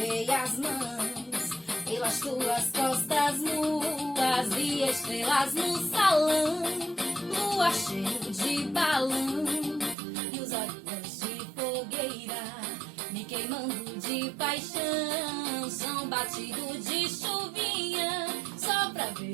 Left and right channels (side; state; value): left; drops out; at 10.0 s